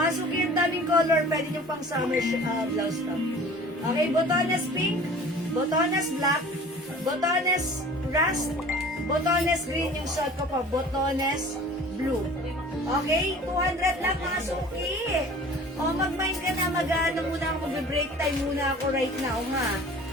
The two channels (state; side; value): normal; both; correlation 0.45